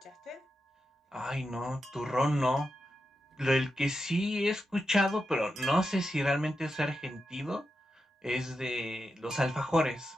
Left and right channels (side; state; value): both; normal; correlation 0.88